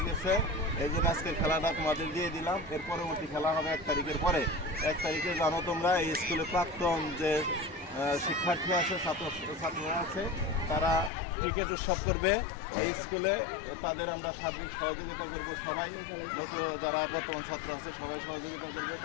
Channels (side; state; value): right; drops out; at 11.1 s